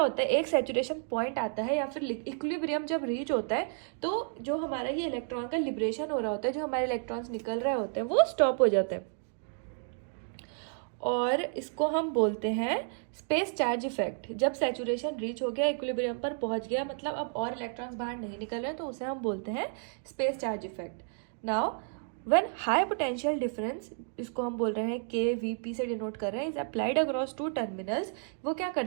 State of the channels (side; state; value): left; silent; 56 dB below the other